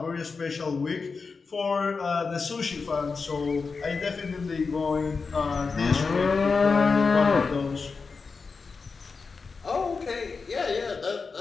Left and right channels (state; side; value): quieter; right; 4.7 dB